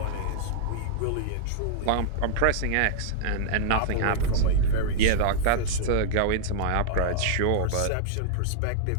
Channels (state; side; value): different; both; correlation -0.01